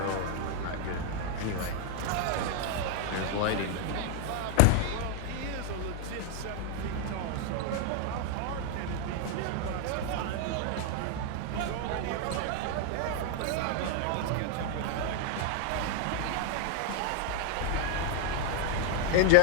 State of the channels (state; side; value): different; both; correlation 0.00